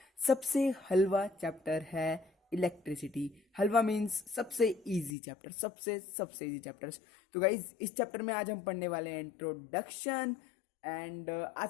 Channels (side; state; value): right; drops out; at 5.1 s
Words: सबसे हलवा चैप्टर है इलेक्ट्रिसिटी। हलवा मीन्स सबसे इजी चैप्टर, सबसे सबसे इजी चैप्टर्स। तो गाइज इस चैप्टर में आज हम पढ़ने वाले हैं इंट्रोडक्शन। एंड